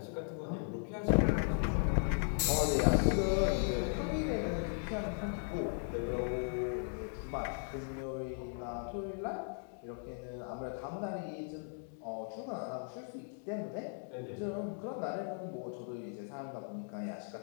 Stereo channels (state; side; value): silent; right; 53 dB below the other